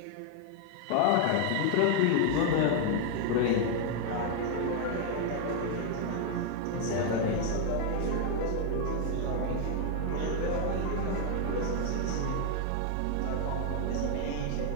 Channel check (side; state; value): both; different; correlation 0.00